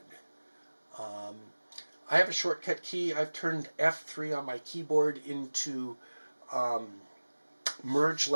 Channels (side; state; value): both; inverted; correlation -1.00